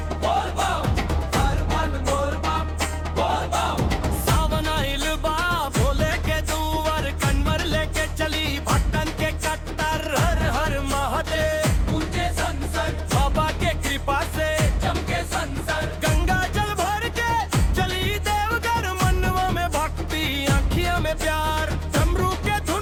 बोल बम, हर मन बोल बम बोल बम। सावन आइल बा भोले के दुआर, कन्वर लेके चली भक्तन के कट्टर। हर हर महादेव ऊंचे संसर बाबा के कृपा से चमके संसर। गंगा जल भर के चली देवघर, मनवा में भक्ति आँखिया में प्यार। डमरू के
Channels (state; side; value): identical; both; correlation 1.00